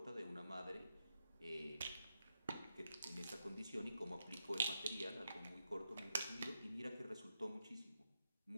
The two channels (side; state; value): both; inverted; correlation -0.85